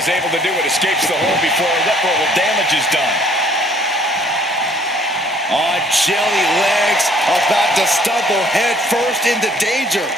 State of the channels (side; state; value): both; normal; correlation 0.58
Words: able to do it. Escapes the hold before irreparable damage is done. On jelly legs, about to stumble head first into danger.